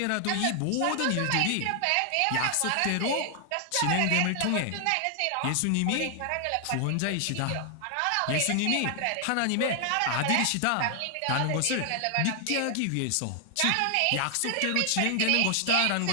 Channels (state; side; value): different; both; correlation 0.00